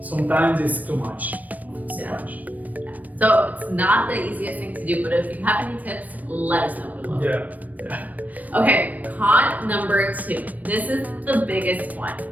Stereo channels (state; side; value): late; left; 0.077 ms